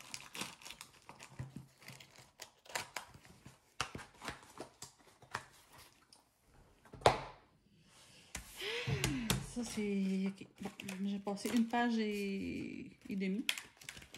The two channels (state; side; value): identical; both; correlation 1.00